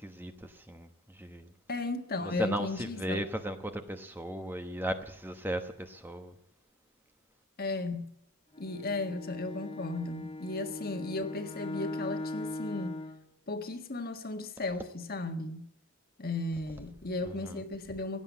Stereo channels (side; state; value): both; normal; correlation 0.46